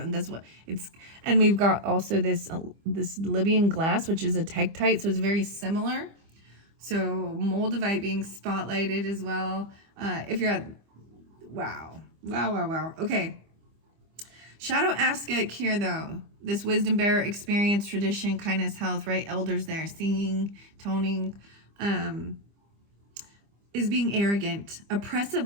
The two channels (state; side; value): late; left; 25 ms